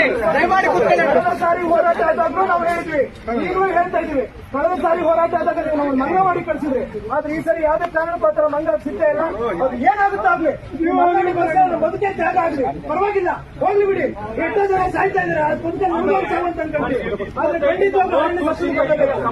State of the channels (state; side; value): identical; both; correlation 1.00